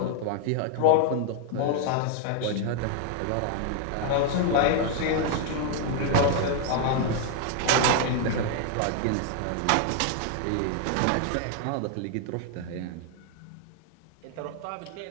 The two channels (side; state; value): both; different; correlation 0.00